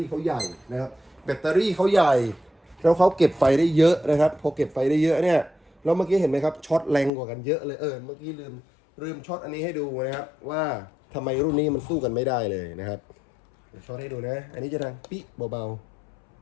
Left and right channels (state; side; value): drops out; right; at 7.1 s